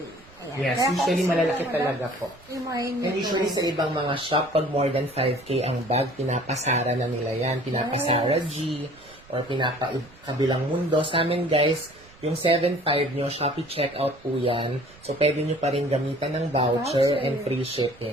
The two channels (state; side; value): noise; right; rumble, 25 dB below the sound